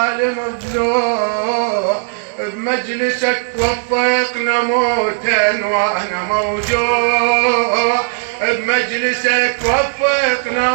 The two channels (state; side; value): silent; left; digital silence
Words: ضلوع، بمجلسك وفقنا موتا وانا موجوع، بمجلسك وفقنا